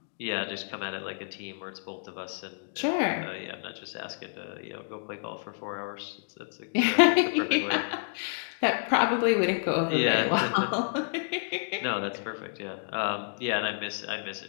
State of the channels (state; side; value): silent; right; digital silence